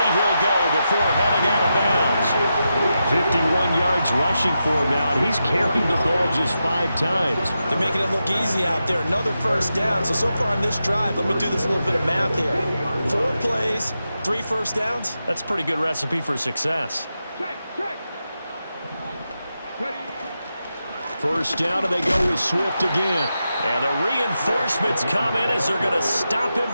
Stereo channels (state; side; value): inverted; both; correlation -0.88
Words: go before heading out of bounds. 51 yards rushing for him now, and he's carried the ball just 5 times. They're making it look easy out there. Another first down. So far on this drive, let me do this little bit of math here. 4 plays, 3 first downs. That's a pretty good recipe for success. First down, and they go with Swift again. And the reinforcements come in as they're going to stop him